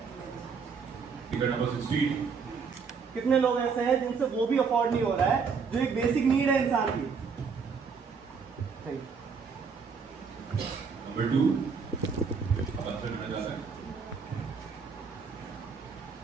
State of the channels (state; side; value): quieter; left; 5.6 dB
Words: Ticket number 16. कितने लोग ऐसे हैं जिनसे वो भी अफोर्ड नहीं हो रहा है जो एक बेसिक नीड है इंसान की? Number 2. अब आंसर करना चाहते हैं।